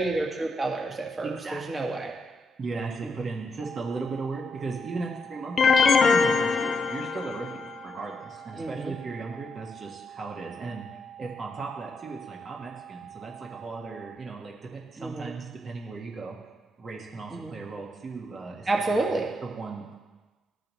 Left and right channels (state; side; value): normal; both; correlation 0.80